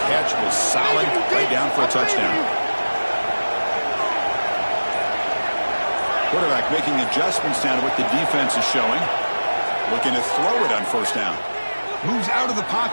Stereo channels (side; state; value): both; inverted; correlation -1.00